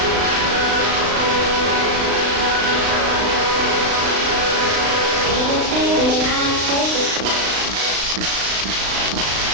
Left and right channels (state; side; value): late; left; 35 ms